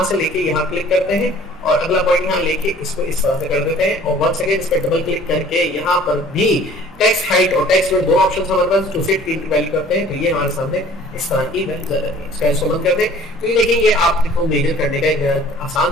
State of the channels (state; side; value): normal; both; correlation 0.51